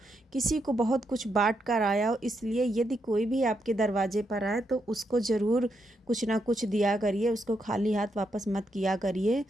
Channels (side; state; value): both; normal; correlation 0.80